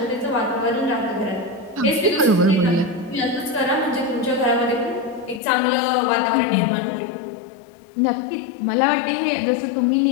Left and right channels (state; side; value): drops out; right; at 5.4 s